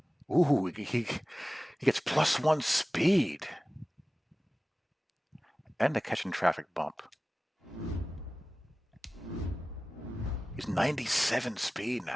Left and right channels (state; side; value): normal; both; correlation 0.97